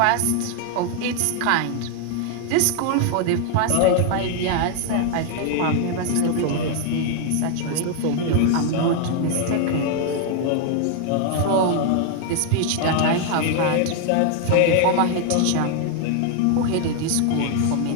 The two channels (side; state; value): both; different; correlation 0.00